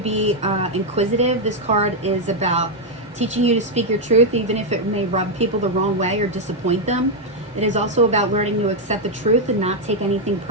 be inquisitive. This card is about teaching you to speak your truth, even if it may rub people the wrong way or disappoint them. It is also about learning to accept the truth and not take anything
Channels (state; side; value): normal; both; correlation 0.00